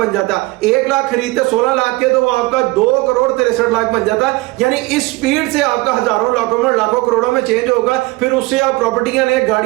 जाता। 1 लाख खरीदते 16 लाख के तो वो आपका 2,63,00,000 बन जाता। यानी इस स्पीड से आपका हजारों, लाखों में और लाखों करोड़ों में चेंज होगा। फिर उससे आप प्रॉपर्टियां ले,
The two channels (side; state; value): left; quieter; 22.2 dB